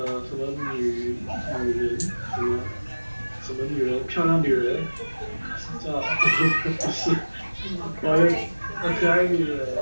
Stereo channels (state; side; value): inverted; both; correlation -1.00